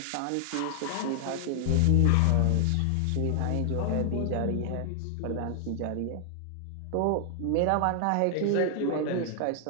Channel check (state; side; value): different; both; correlation 0.00